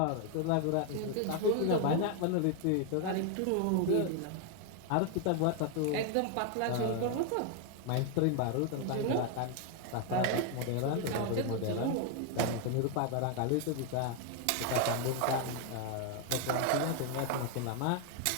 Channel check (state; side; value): different; both; correlation 0.01